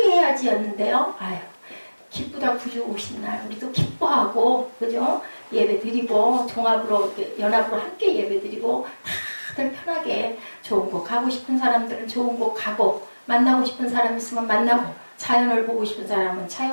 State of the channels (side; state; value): both; inverted; correlation -1.00